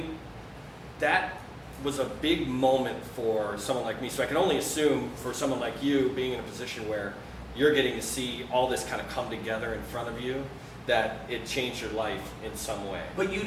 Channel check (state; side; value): identical; both; correlation 1.00